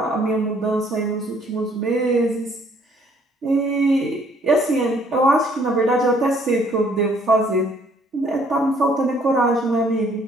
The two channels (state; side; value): normal; both; correlation 0.63